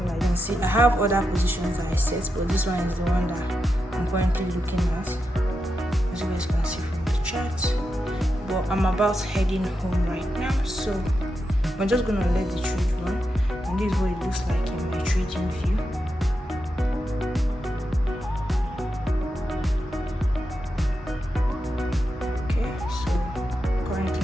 like you can see. I have other positions that I set, but this one is the one that I'm currently looking at. As you guys can see from the chart. But I'm about heading home right now, so I'm just gonna let the trade run. And this is what it looks like in my trading view. Okay, so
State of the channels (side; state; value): both; normal; correlation 0.87